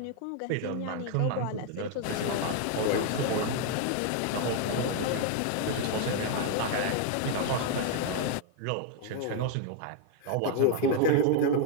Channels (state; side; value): different; both; correlation 0.00